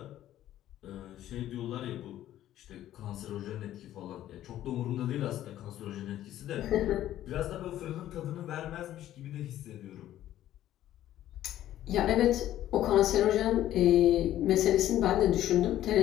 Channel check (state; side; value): quieter; right; 12.8 dB